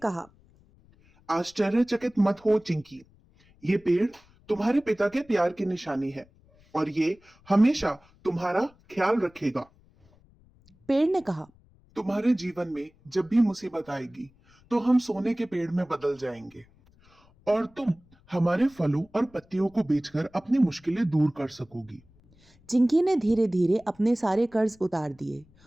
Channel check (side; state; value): left; noise; rumble, 30 dB below the sound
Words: आश्चर्यचकित मत हो चिंकी, ये पेड़ तुम्हारे पिता के प्यार की निशानी है और ये हमेशा तुम्हारा ख्याल रखेगा। पेड़ ने कहा, तुम्हारे जीवन में जब भी मुसीबत आएगी तो हम सोने के पेड़ में बदल जाएंगे और तुम हमारे फलों और पत्तियों को बेचकर अपनी मुश्किलें दूर कर सकोगी। चिंकी ने धीरे धीरे अपने सारे कर्ज उतार दिए